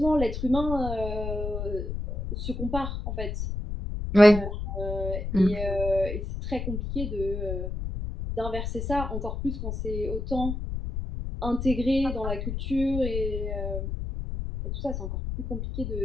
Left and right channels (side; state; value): left; noise; rumble, 4 dB below the sound